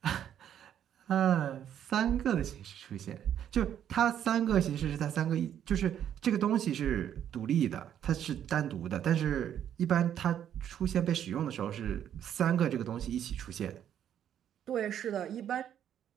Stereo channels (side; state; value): left; quieter; 9.9 dB